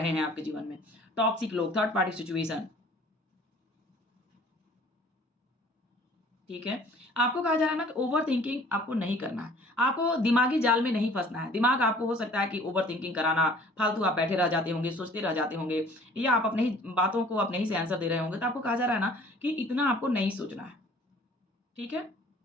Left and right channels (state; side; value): normal; both; correlation 0.52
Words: हैं आपके जीवन में। टॉक्सिक लोग, थर्ड पार्टी सिचुएशन, ठीक है? आपको कहा जा रहा है ना कि ओवरथिंकिंग आपको नहीं करना है। आपको दिमागी जाल में नहीं फँसना है। दिमाग आपको हो सकता है कि ओवरथिंकिंग कराना, फालतू आप बैठे रह जाते होंगे, सोचते रह जाते होंगे या आप अपने ही बातों को अपने ही से आंसर दे रहे होंगे। तो आपको कहा जा रहा है ना कि इतना आपको नहीं सोचना है, ठीक है?